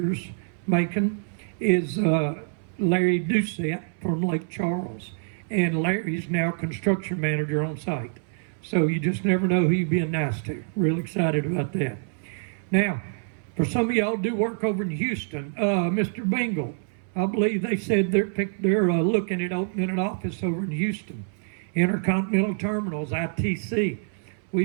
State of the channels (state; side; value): silent; left; 61 dB below the other